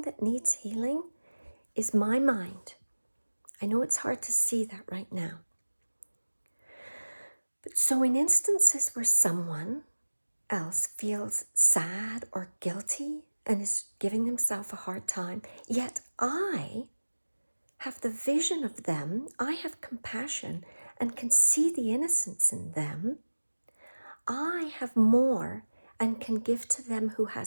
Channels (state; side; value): inverted; both; correlation -1.00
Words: that needs healing is my mind. I know it's hard to see that right now. But so in instances where someone else feels sad or guilty and is giving themselves a hard time, yet I have the vision of them, I have compassion and can see the innocence in them, I have more and can give to them who